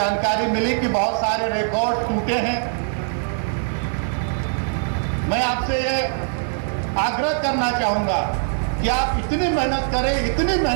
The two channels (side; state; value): left; silent; digital silence